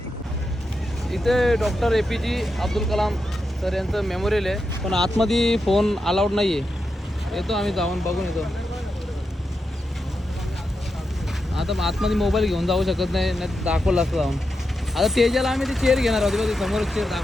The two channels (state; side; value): normal; both; correlation 0.87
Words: इथे doctor APJ Abdul Kalam sir यांचं मेमोरियल आहे, पण आतमध्ये फोन अलाउड नाही आहे. येतो आम्ही जाऊन बघून येतो. आता आतमध्ये मोबाईल घेऊन जाऊ शकत नाही, नाही दाखवलं असतं जाऊन. आता तेजाला आम्ही ती चेअर घेणार आहोत बघ, समोर चेअर